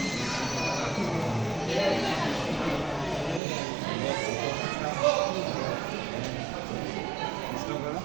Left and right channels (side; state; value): left; drops out; at 3.4 s